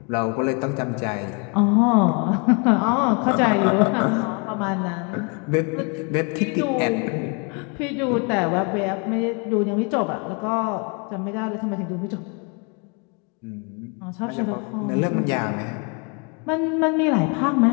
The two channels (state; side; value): quieter; right; 33.5 dB